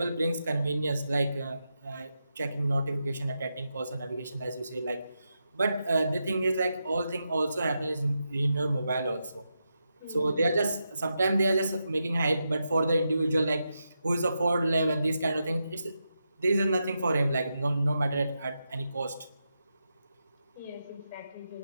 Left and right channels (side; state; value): both; inverted; correlation -0.87